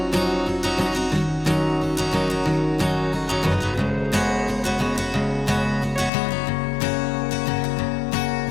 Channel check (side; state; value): right; drops out; at 6.1 s